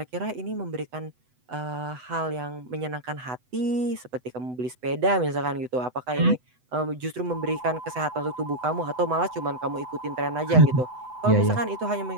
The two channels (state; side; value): late; left; 8.0 ms